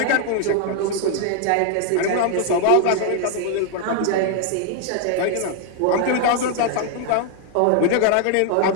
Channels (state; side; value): different; both; correlation 0.00